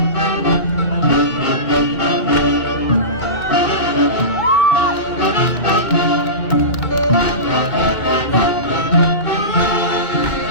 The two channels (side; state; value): right; late; 2.1 ms